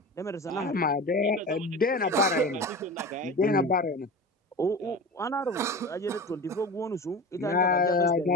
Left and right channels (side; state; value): both; normal; correlation 0.31